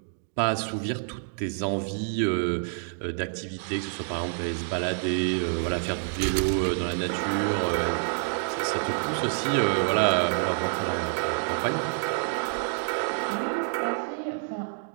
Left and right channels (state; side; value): silent; left; digital silence